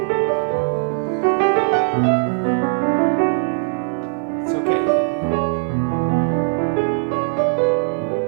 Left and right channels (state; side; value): silent; left; 58 dB below the other